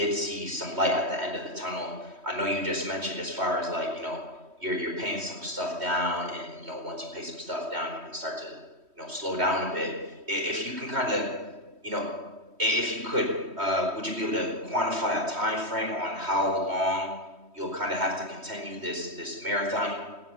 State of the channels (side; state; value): left; late; 3.1 ms